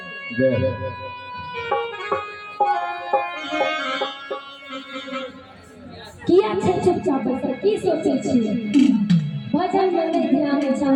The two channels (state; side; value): identical; both; correlation 1.00